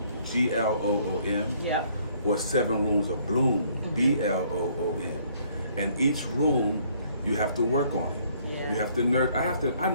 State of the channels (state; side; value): inverted; both; correlation -0.64